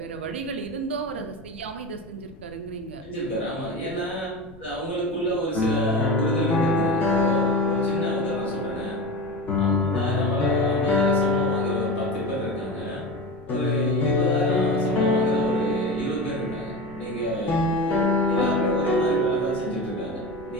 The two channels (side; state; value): left; noise; rumble, 21 dB below the sound